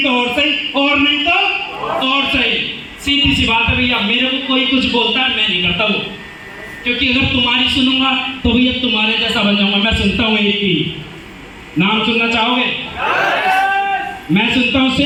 तो और सही, और नहीं तो और सही। सीधी सी बात है भैया, मेरे को कोई कुछ बोलता है मैं नहीं करता वो, क्योंकि अगर तुम्हारी सुनूंगा तो भैया तुम्हारे जैसा बन जाऊंगा। मैं सुनता हूँ एक ही नाम, सुनना चाहोगे? मैं सुनता हूँ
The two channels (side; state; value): both; identical; correlation 1.00